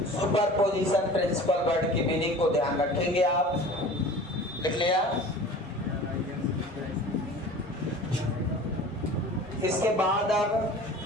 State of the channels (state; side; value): normal; both; correlation 0.41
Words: सुपरपोजिशन प्रिंसिपल वर्ड की मीनिंग को ध्यान रखेंगे आप। लिख लिया? इसके बाद अब